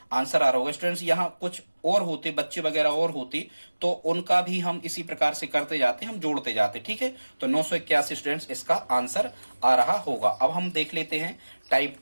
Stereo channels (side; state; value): both; inverted; correlation -1.00